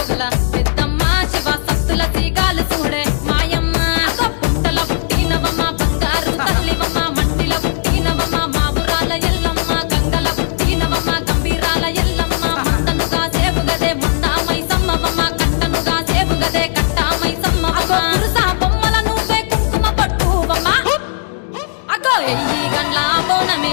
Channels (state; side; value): silent; right; digital silence